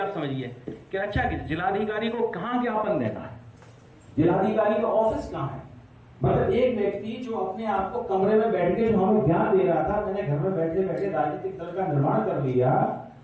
समझिए कि अच्छा कि जिलाधिकारी को कहां ज्ञापन देना है, जिलाधिकारी का ऑफिस कहां है। मतलब एक व्यक्ति जो अपने आप को कमरे में बैठ के जो हमें ज्ञान दे रहा था, मैंने घर में बैठे बैठे राजनीतिक दल का निर्माण कर लिया,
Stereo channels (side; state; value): both; identical; correlation 1.00